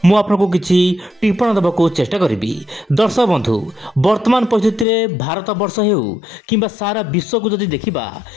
मु आपको किसी टिप्पणी देवाक चेष्टा करी। दर्शक बंधु वर्तमान परिस्थिति में भारत वर्ष हो कि सारा विश्व को जदि देखा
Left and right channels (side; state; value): right; drops out; at 4.9 s